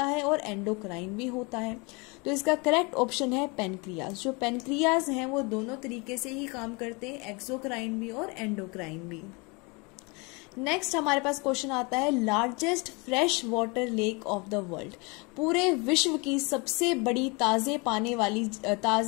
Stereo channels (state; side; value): quieter; right; 28.8 dB